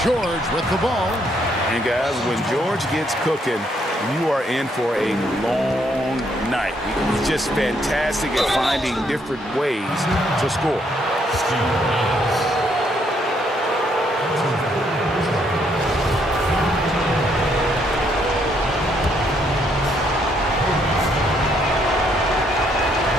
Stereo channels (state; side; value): normal; both; correlation 0.71